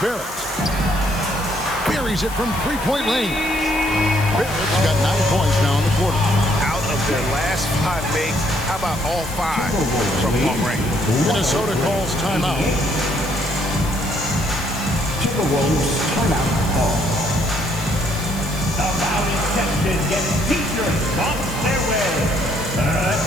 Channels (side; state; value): left; noise; hiss, 14 dB below the sound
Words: Buries it from three-point range. Barrett's got 9 points now in the quarter. Out of their last 5 makes, how about all 5 from long range? Minnesota calls timeout. Timberwolves timeout call. The Mountain Texans get teachers on their way. Let